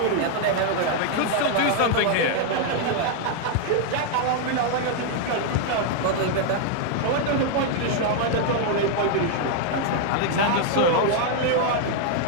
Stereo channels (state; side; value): different; both; correlation 0.00